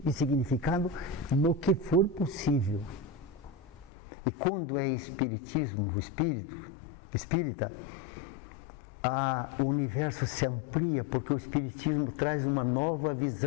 e significado no que for possível. E quando é espiritismo, o espírita, o universo se amplia, porque o espiritismo traz uma nova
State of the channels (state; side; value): drops out; right; at 3.9 s